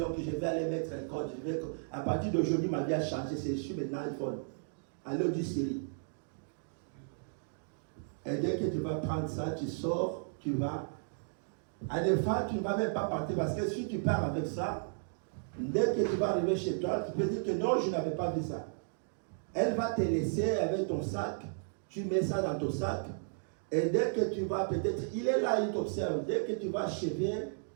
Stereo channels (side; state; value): left; silent; digital silence